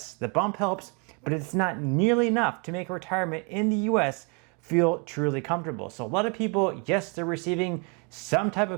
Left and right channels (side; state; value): left; quieter; 33.7 dB